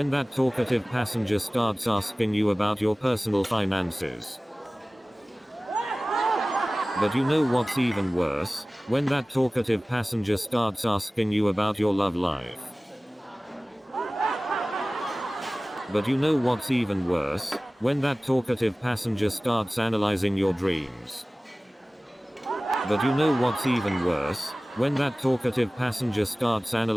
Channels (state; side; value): normal; both; correlation 0.98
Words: that talkative passenger starts asking you about your personal finances. But you know what's even worse? When that talkative passenger starts asking you about your love life. But you know what's even worse? When that talkative passenger starts analyzing your dreams. But you know what's even worse? When that talkative passenger starts